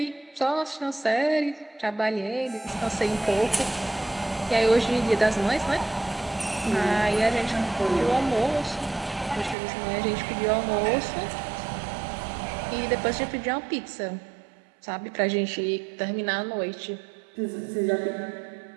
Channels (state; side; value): drops out; left; at 9.6 s